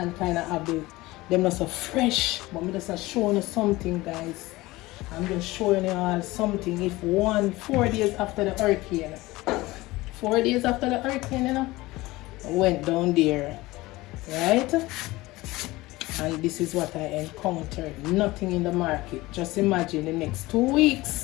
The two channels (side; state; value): right; quieter; 19.7 dB